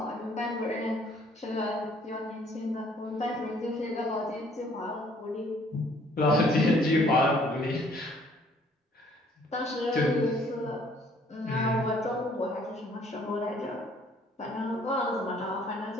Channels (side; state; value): both; normal; correlation 0.60